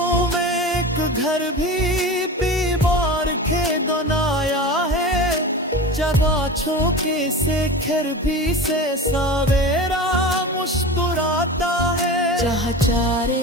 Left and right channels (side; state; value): both; normal; correlation 0.30